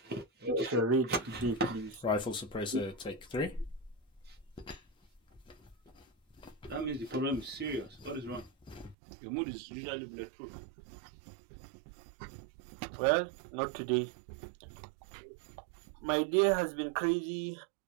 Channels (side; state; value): left; drops out; at 9.0 s